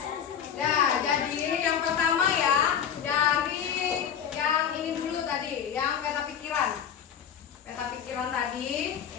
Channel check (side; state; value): right; quieter; 8.5 dB